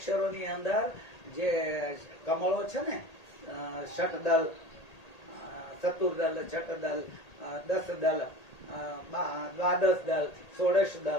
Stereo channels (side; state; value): right; late; 1.8 ms